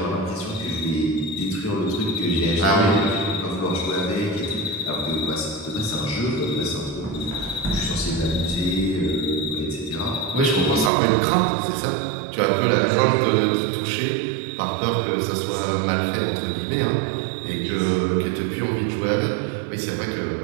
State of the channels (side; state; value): left; drops out; at 10.9 s